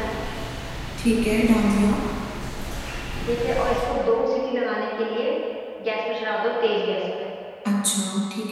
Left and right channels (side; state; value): both; identical; correlation 1.00